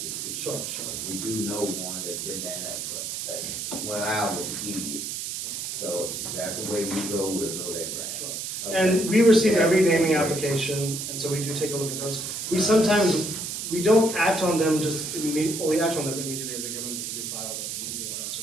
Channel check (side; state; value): right; noise; hiss, 5 dB below the sound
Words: get to. Sure, sure. We do know one that's been that when I was a kid. So that's the way we go, we'll go that route. Sure. Okay. And we receive every naming application, and so we do take a look at those. We don't act on them just immediately, well, we act on them immediately as they come in because we file them and do all that